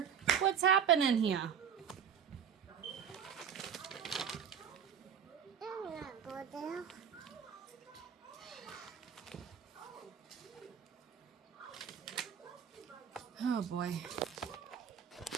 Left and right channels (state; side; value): quieter; left; 8.0 dB